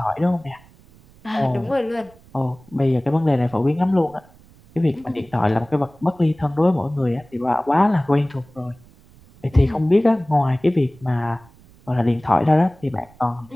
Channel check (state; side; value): noise; right; rumble, 26 dB below the sound